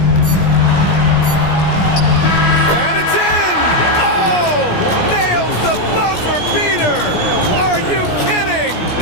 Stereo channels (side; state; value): right; late; 17 ms